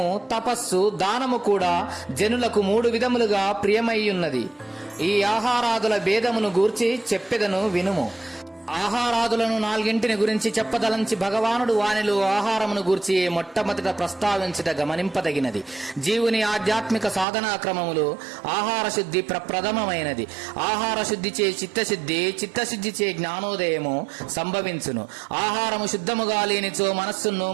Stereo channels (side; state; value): left; drops out; at 17.2 s